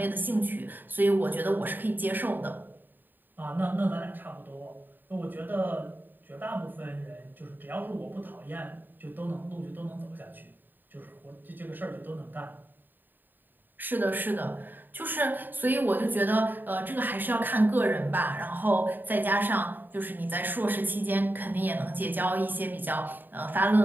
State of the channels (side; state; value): left; late; 0.091 ms